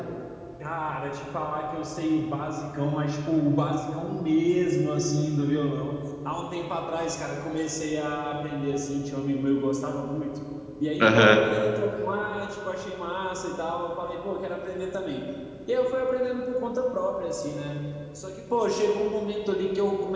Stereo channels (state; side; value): identical; both; correlation 1.00